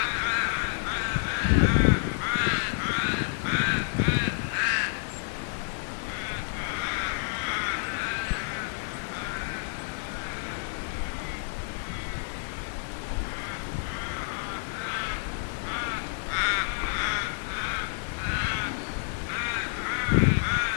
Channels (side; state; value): right; silent; digital silence